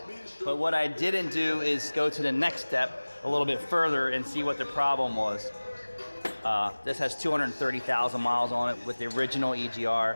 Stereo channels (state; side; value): inverted; both; correlation -1.00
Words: But what I didn't do is go to the next step a little bit further and see what the problem was. This has 230,000 miles on it with the original